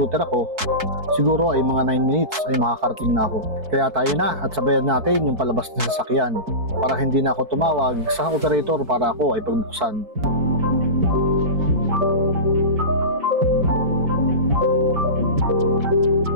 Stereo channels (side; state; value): left; late; 4.6 ms